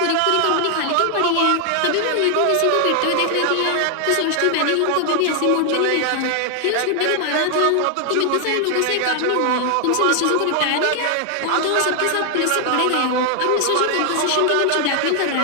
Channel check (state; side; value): different; both; correlation 0.00